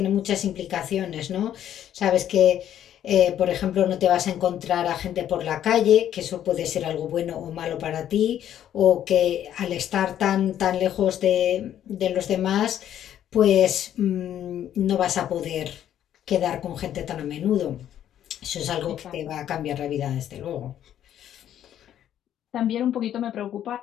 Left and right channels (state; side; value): quieter; right; 10.8 dB